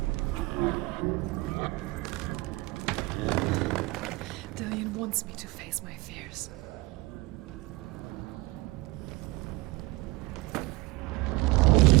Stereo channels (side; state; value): left; quieter; 22.2 dB